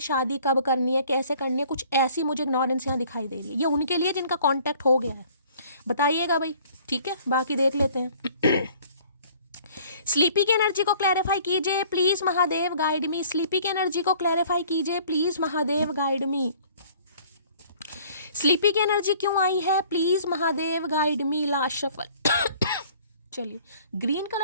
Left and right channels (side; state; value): both; inverted; correlation -0.54